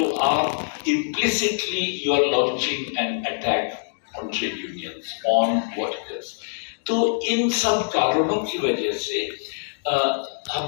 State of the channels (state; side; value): silent; right; digital silence